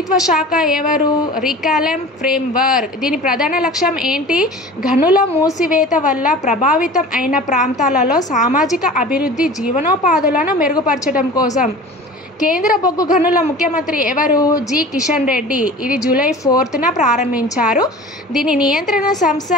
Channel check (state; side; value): normal; both; correlation 0.39